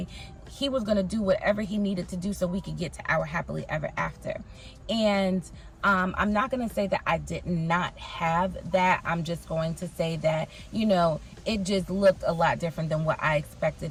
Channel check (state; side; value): identical; both; correlation 1.00